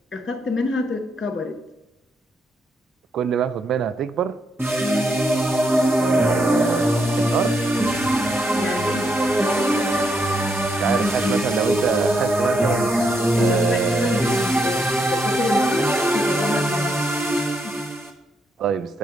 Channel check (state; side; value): normal; both; correlation 0.78